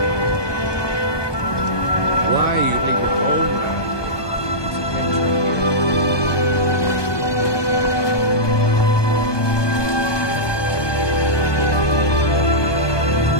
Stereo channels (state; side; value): late; right; 1.2 ms